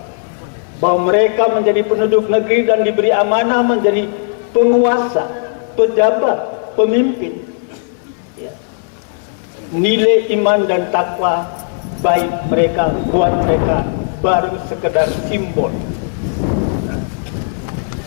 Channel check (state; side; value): silent; right; digital silence